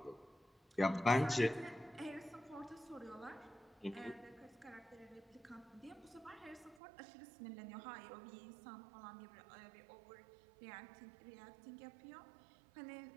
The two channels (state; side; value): drops out; left; at 6.8 s